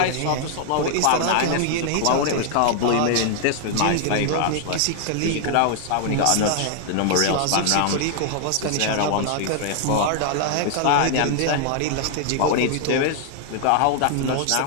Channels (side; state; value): both; different; correlation 0.00